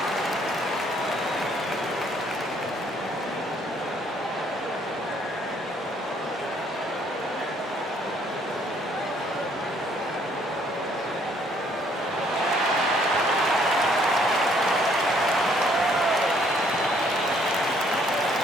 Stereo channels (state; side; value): normal; both; correlation 0.65